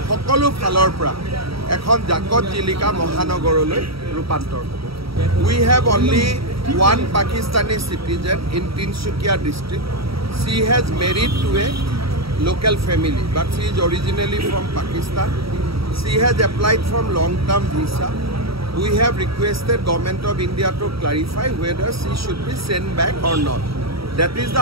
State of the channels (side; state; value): left; late; 0.76 ms